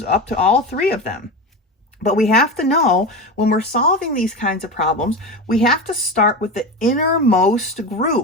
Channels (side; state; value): both; normal; correlation 0.24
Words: up to all three of them. But we have to know when we're solving these kinds of problems, we have to start with the innermost